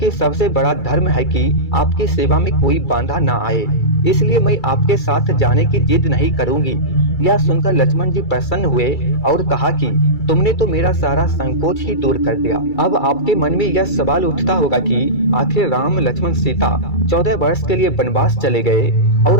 सबसे बड़ा धर्म है कि आपकी सेवा में कोई बाधा ना आए, इसलिए मैं आपके साथ जाने की जिद नहीं करूंगी। यह सुनकर लक्ष्मण जी प्रसन्न हुए और कहा कि तुमने तो मेरा सारा संकोच ही दूर कर दिया। अब आपके मन में यह सवाल उठता होगा कि आखिर राम लक्ष्मण सीता 14 वर्ष के लिए वनवास चले गए, और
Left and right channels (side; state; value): right; late; 2.3 ms